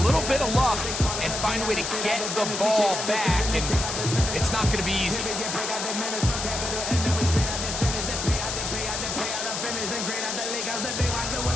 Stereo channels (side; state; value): left; noise; hiss, 3 dB below the sound